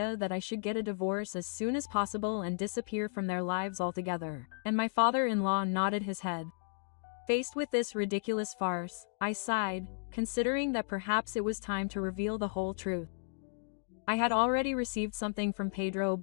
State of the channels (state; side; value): silent; right; digital silence